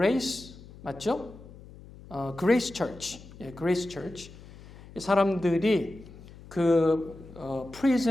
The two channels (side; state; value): left; noise; hum, 19 dB below the sound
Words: 맞죠? 그레이스 처치, 그레이스 처치. 이 사람들이 그